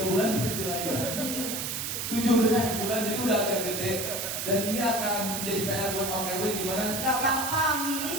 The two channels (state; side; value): noise; right; hiss, 3 dB below the sound